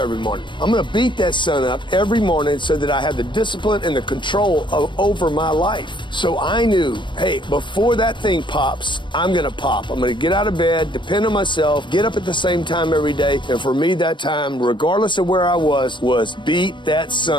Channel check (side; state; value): right; late; 0.23 ms